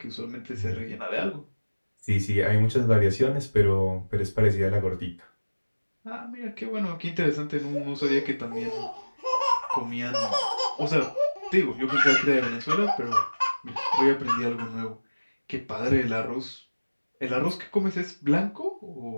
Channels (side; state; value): both; inverted; correlation -1.00